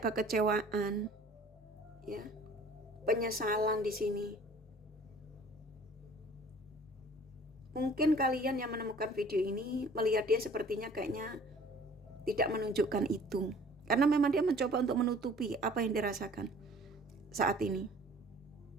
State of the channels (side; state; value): both; normal; correlation 0.51